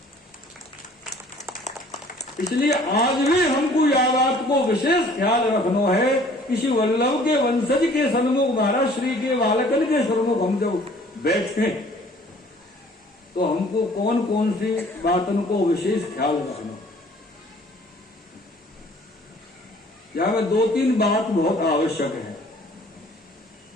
इसलिए आज भी हमको यह बात को विशेष ख्याल रखना है कि श्री वल्लभ के वंशज के सन्मुख महाराज श्री के बालकन के सन्मुख हम जब बैठे तो हमको कौन कौन सी बातों को विशेष ख्याल रखना। यहां में 2-3 बात बहुत आवश्यक है।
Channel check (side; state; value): both; normal; correlation 0.54